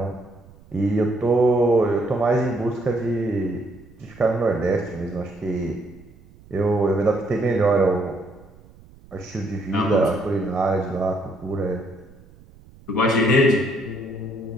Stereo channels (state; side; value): noise; right; rumble, 24 dB below the sound